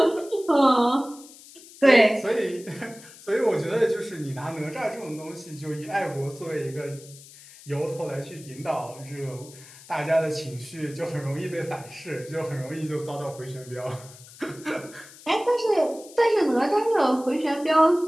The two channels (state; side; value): noise; left; hiss, 20 dB below the sound